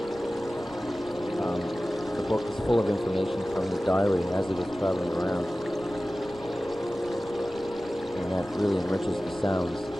The book is full of information from his diary as he was traveling around, and that really enriches the sounds.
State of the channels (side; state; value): right; noise; rumble, 20 dB below the sound